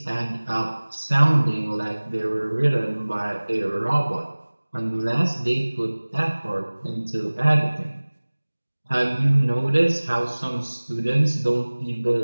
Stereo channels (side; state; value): both; inverted; correlation -1.00